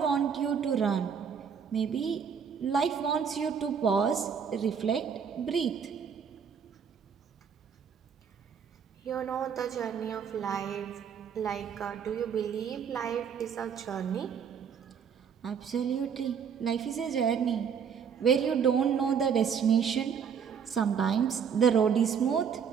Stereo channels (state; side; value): quieter; left; 7.1 dB